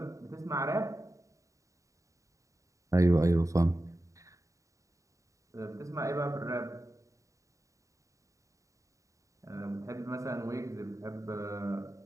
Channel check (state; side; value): late; left; 0.16 ms